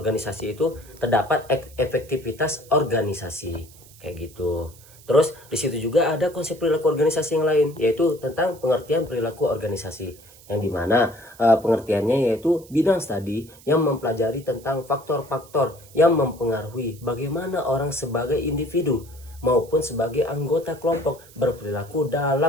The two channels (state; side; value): noise; right; hiss, 23 dB below the sound